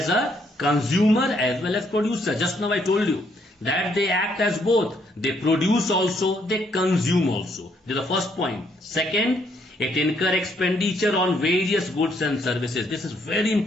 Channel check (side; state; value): both; normal; correlation 0.71